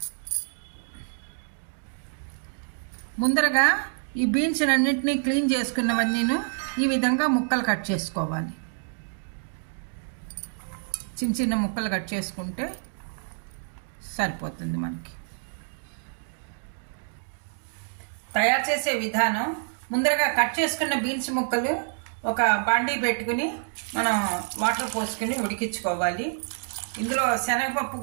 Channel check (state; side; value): silent; left; digital silence